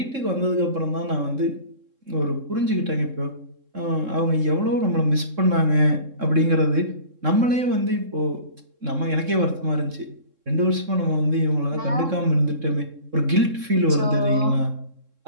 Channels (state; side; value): late; left; 3.7 ms